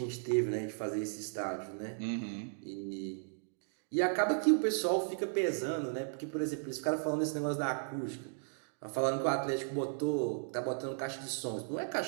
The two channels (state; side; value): silent; left; digital silence